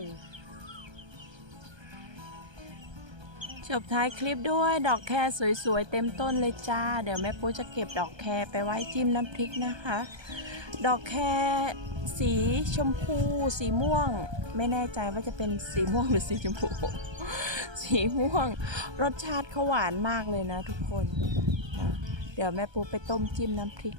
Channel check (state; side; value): late; left; 1.3 ms